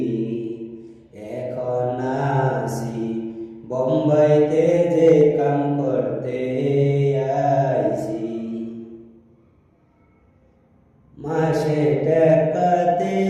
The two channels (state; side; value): identical; both; correlation 1.00